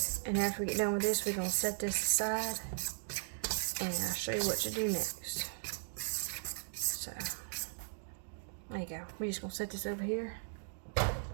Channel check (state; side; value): silent; left; digital silence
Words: And after we get done with this, we're gonna set this aside and I'll show you what to do next. So there you go. We're just gonna set this over here